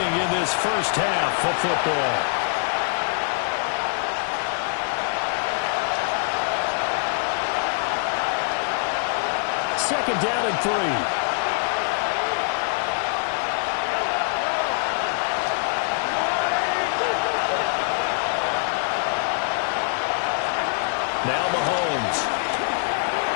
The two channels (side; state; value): right; silent; digital silence